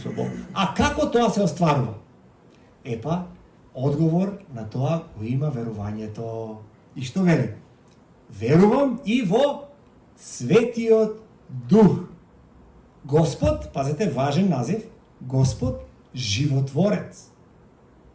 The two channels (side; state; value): both; identical; correlation 1.00